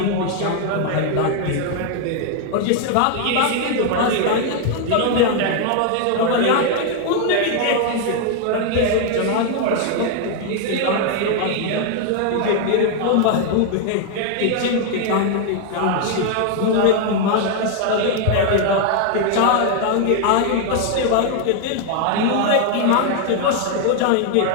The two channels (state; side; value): different; both; correlation 0.00